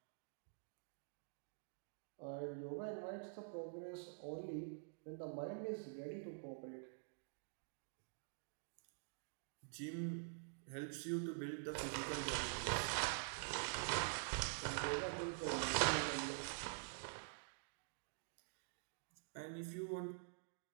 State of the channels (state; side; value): silent; left; digital silence